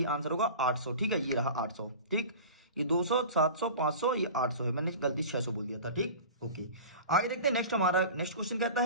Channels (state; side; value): inverted; both; correlation -0.36